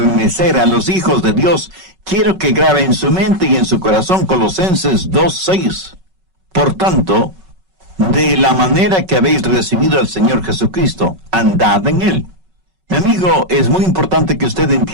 a los hijos de Dios, quiero que grabe en su mente y en su corazón Colosenses 2:6. Por tanto, de la manera que habéis recibido al Señor Jesucristo, andad en Él. Mi amigo, es muy importante que usted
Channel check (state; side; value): late; left; 5.3 ms